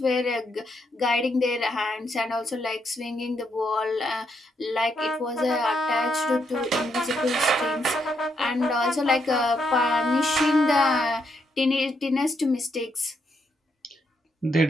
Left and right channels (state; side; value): normal; both; correlation 0.78